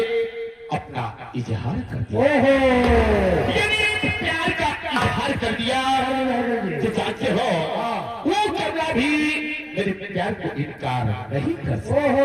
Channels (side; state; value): both; identical; correlation 1.00